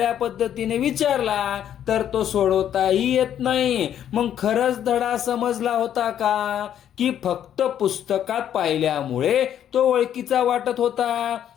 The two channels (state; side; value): quieter; right; 10.1 dB